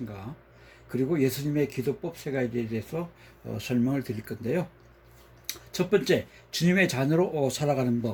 그리고 예수님의 기도법 세 가지에 대해서 설명을 드릴 건데요. 첫 번째, 주님의 자녀로 살아가는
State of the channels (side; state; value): both; identical; correlation 1.00